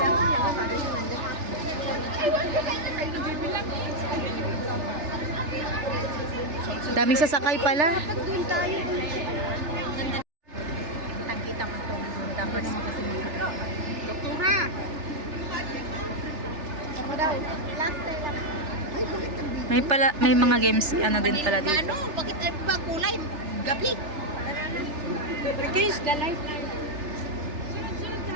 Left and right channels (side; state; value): left; late; 3.4 ms